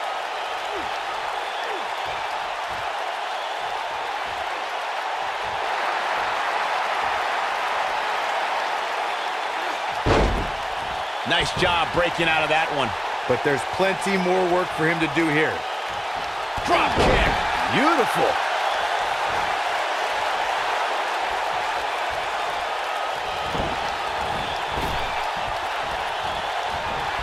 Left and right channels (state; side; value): identical; both; correlation 1.00